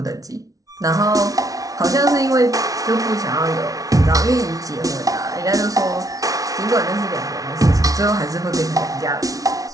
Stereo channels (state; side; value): late; left; 0.18 ms